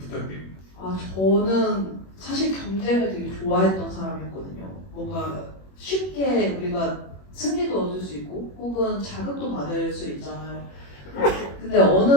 저는 사실 경쟁을 되게 좋아했던 사람이었거든요. 뭔가 쉽게 우리가 승리도 얻을 수 있고 혹은 자극도 받을 수 있잖아요. 근데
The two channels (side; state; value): right; late; 21 ms